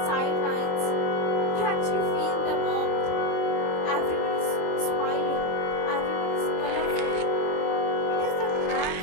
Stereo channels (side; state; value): right; late; 26 ms